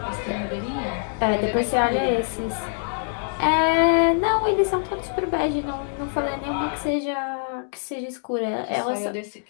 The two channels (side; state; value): right; silent; digital silence